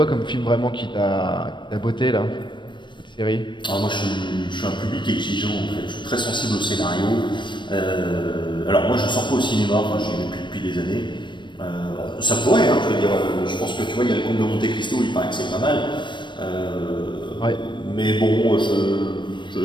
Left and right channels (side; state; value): right; late; 0.22 ms